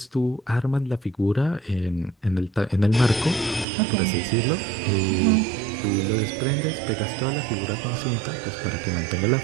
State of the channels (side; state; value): left; drops out; at 3.7 s